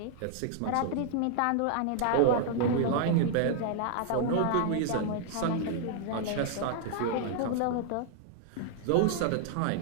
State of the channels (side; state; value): both; different; correlation 0.00